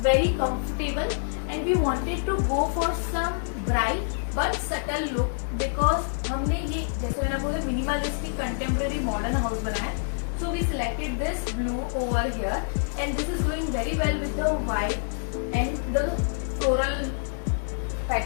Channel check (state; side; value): silent; right; digital silence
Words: very comfortable, and we wanted to go for some bright but subtle look because हमने ये जैसे मैंने बोला minimalistic contemporary modern house बनाया. So we selected this blue over here, and this is going very well with the white and the floral